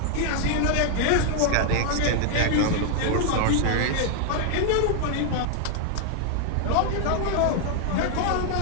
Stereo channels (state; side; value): different; both; correlation 0.00